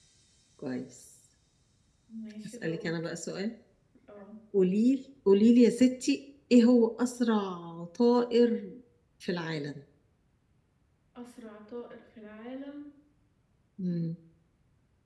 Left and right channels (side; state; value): both; identical; correlation 1.00